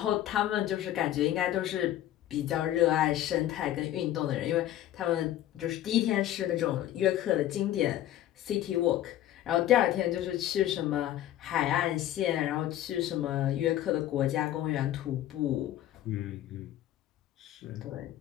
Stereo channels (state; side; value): quieter; right; 12.8 dB